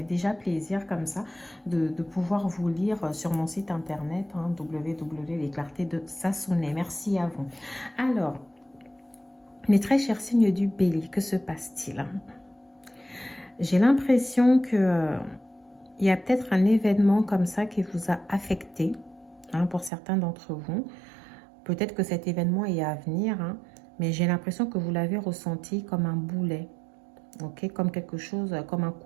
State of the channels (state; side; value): drops out; left; at 19.9 s